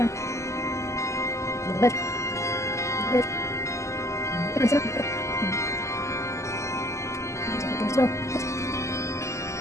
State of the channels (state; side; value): late; right; 0.14 ms